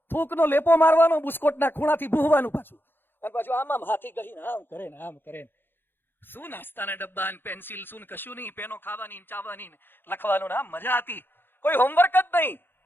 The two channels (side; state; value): right; late; 0.10 ms